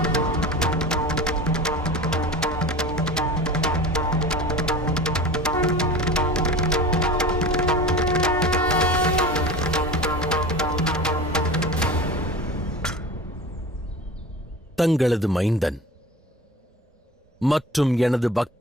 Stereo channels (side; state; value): both; normal; correlation 0.35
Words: தங்களது மைந்தன் மற்றும் எனது